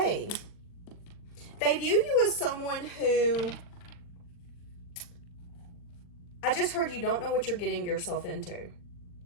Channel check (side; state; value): right; late; 40 ms